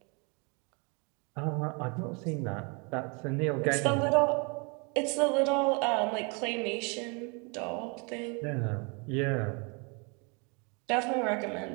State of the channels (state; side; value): quieter; left; 32.8 dB